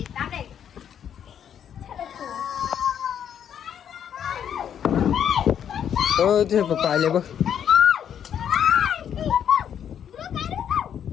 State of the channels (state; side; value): quieter; right; 9.0 dB